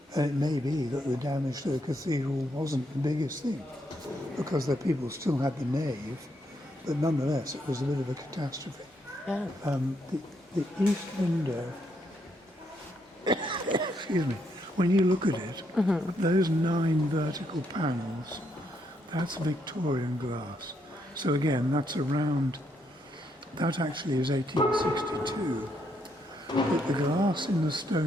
And it may be that the damage to the cathedral wasn't the biggest thing, because the people still had the nave, but nonetheless it was a bit of a catastrophe. Yeah. The east window, excuse me, when you look at it, those 9 vertical panels, that's Victorian glass. So again, that's around, that actually is 1862. But the glass in the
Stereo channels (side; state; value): both; normal; correlation 0.76